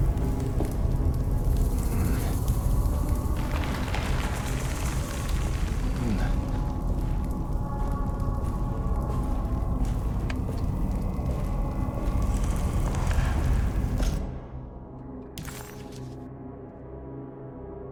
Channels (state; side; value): identical; both; correlation 1.00